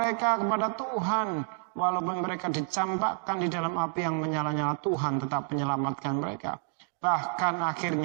kepada Tuhan, walaupun mereka dicampakkan di dalam api yang menyala-nyala, Tuhan tetap menyelamatkan mereka. Bahkan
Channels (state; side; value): silent; left; 58 dB below the other